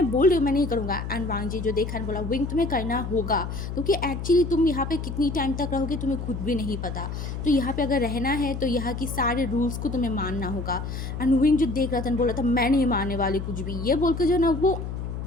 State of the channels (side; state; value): left; noise; hum, 6 dB below the sound